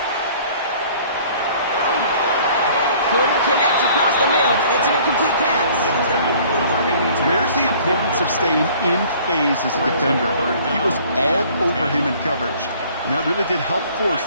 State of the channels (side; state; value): both; inverted; correlation -0.53